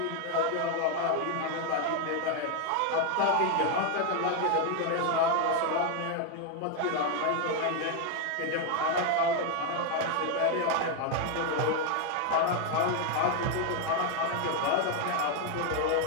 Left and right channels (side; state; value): both; different; correlation 0.01